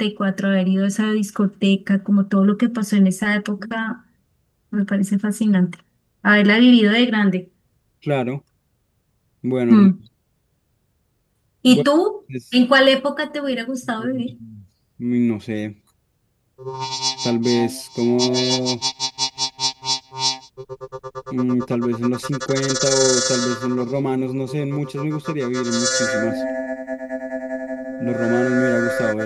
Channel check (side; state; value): both; identical; correlation 1.00